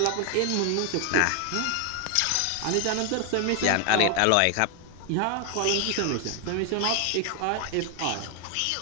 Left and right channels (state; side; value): different; both; correlation 0.00